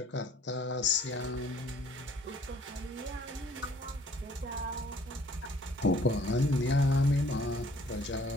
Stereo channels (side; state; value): both; normal; correlation 0.57